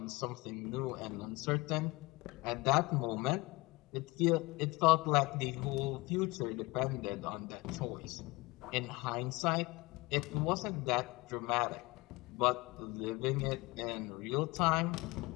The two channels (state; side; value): quieter; right; 23.6 dB